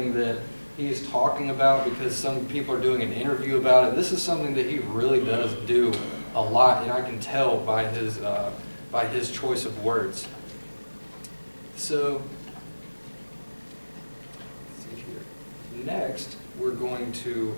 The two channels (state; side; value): inverted; both; correlation -1.00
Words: that he's talking about because some people are doing an interview about it. This is something that he really does do a lot, and I can tell by his choice of words. So, let's see here. Next, we're going to